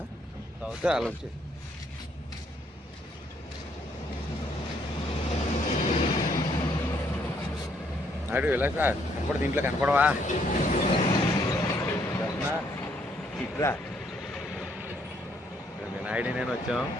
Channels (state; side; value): normal; both; correlation 0.70